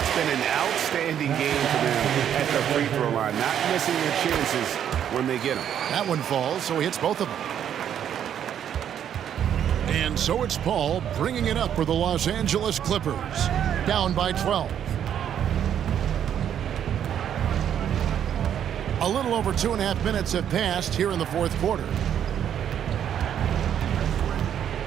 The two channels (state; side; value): quieter; left; 9.5 dB